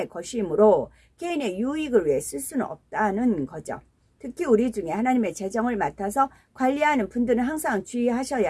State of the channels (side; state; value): both; identical; correlation 1.00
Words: 것이므로 개인의 유익을 위해 쓸 수는 없다는 거죠. 특히 우리 중에 하나님의 재정을 맡아서 관리하는 분들은 항상